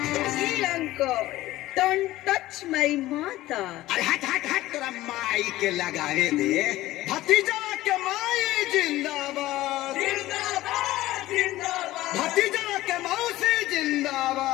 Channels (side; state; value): right; quieter; 16.4 dB